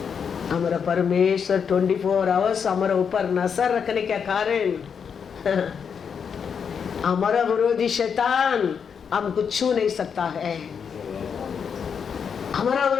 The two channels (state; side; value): quieter; right; 6.8 dB